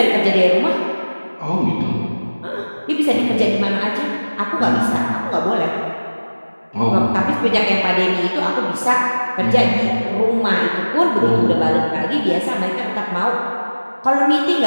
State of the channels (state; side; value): inverted; both; correlation -1.00